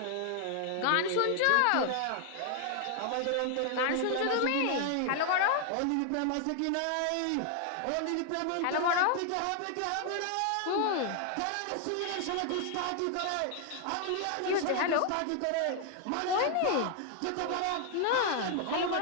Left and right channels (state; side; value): different; both; correlation 0.00